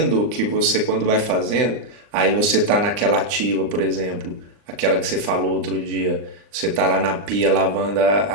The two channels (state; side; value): late; left; 39 ms